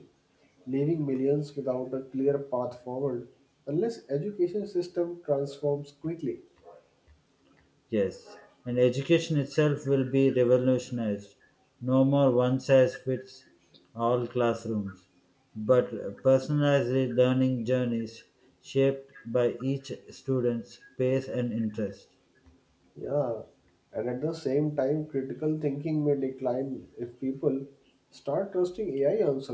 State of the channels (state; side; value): identical; both; correlation 1.00